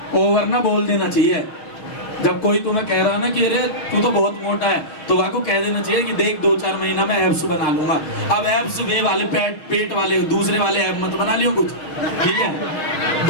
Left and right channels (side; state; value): right; late; 6.3 ms